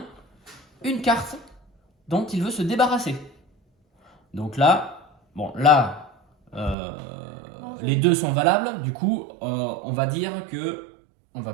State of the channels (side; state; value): left; drops out; at 6.8 s